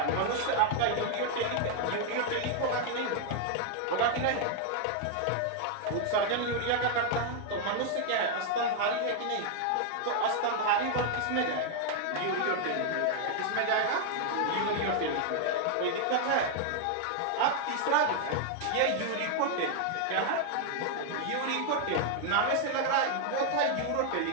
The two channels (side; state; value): both; different; correlation 0.00